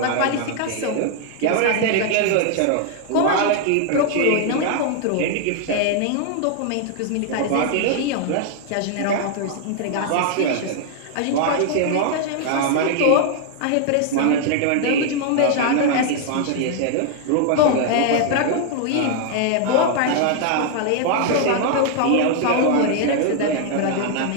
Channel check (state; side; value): different; both; correlation 0.00